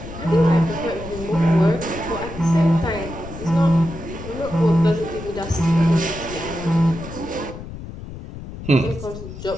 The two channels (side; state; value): left; noise; rumble, 12 dB below the sound